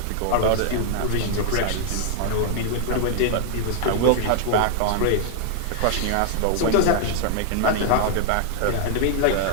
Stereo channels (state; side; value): different; both; correlation 0.00